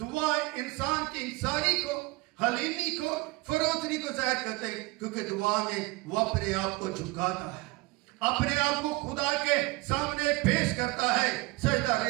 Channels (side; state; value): left; quieter; 22.3 dB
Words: इंसान की इंसानी को, हलीमी को, फरोतनी को जाहिर करते हैं, क्योंकि दुआ में वो अपने आप को झुकाता है, अपने आप को खुदा के सामने पेश करता है, सजदा